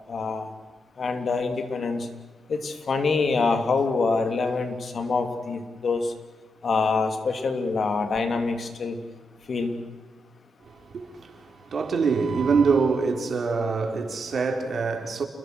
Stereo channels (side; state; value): both; normal; correlation 0.81